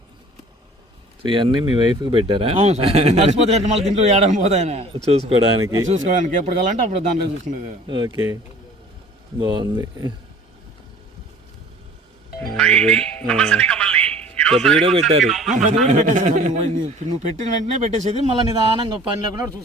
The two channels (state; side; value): normal; both; correlation 0.48